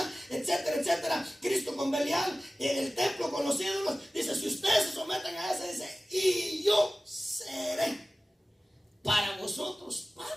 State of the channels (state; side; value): normal; both; correlation 0.96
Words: etcétera, etcétera. Cristo con Belial, el templo con los ídolos. Dice, si ustedes se someten a eso, dice, y yo seré para vosotros